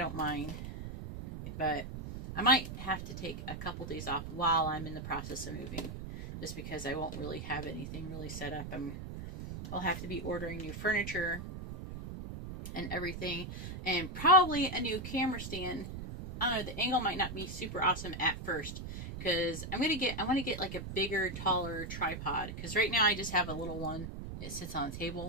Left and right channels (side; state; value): right; noise; rumble, 8 dB below the sound